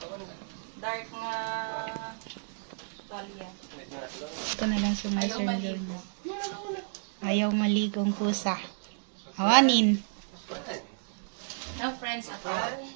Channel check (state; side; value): silent; left; digital silence